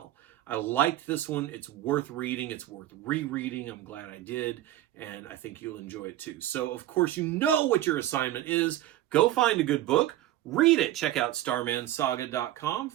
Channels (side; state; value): left; quieter; 14.1 dB